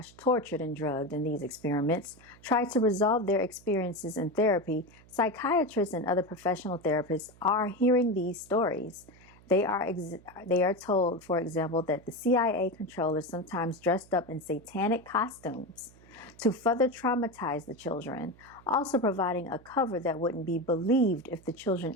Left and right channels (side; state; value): right; noise; hum, 25 dB below the sound